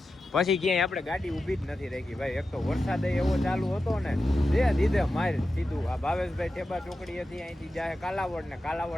પછી ક્યાંય આપણે ગાડી ઊભી જ નથી રાખી ભાઈ એક તો વરસાદ એવો ચાલુ હતો ને દીધે માર સીધું આ ભાવેશભાઈ ઠેબા ચોકડી હતી અહીંથી જાય કાલાવડ ને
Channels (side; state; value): both; normal; correlation 0.91